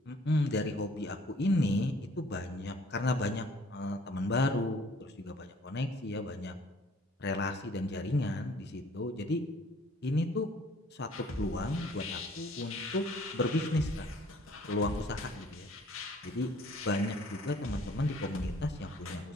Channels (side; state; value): both; normal; correlation 0.56